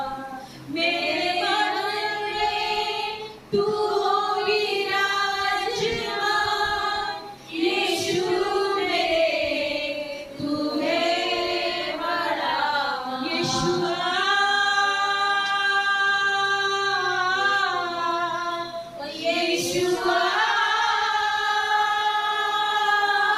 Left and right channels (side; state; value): both; identical; correlation 1.00